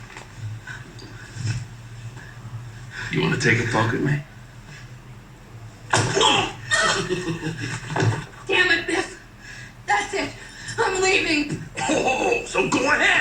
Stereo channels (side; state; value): both; identical; correlation 1.00